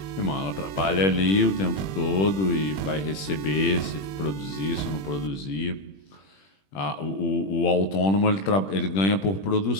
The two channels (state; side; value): late; right; 21 ms